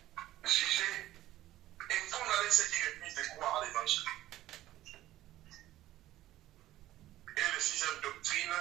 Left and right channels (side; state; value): left; quieter; 14.8 dB